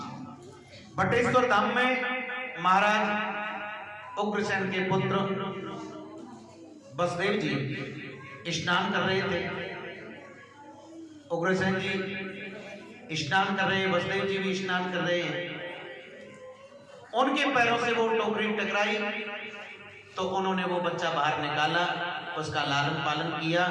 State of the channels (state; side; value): identical; both; correlation 1.00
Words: बटेश्वर धाम में महाराज उग्रसेन के पुत्र वसुदेव जी स्नान कर रहे थे। उग्रसेन जी स्नान कर रहे हैं, वसुदेव जी भी स्नान कर रहे हैं। उनके पैरों से वो टोकरी टकराई तो उन्होंने वो बच्चा बाहर निकाला, उसका लालन पालन किया।